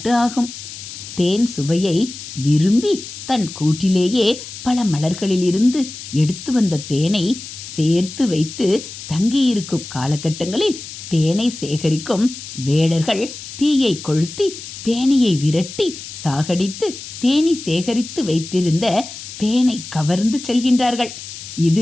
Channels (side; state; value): left; noise; hiss, 12 dB below the sound